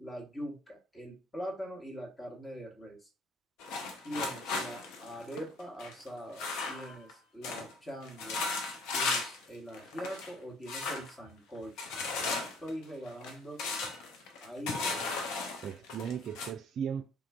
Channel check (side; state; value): both; normal; correlation 0.56